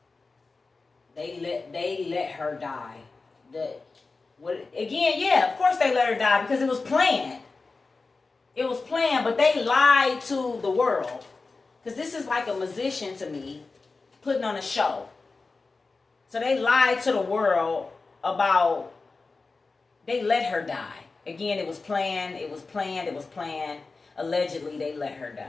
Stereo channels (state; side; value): quieter; right; 3.9 dB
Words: They let her die. Again, yeah, of course they let her die because it was planned. It was planned, but they lied to the world. Because this is like a musician to me putting on a show. So they lied to the world about, they let her die. Again, it was planned, it was planned, it was planned. Allegedly, they let her